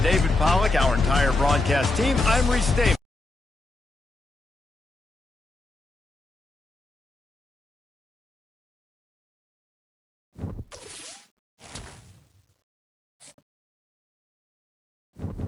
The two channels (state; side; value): quieter; right; 3.0 dB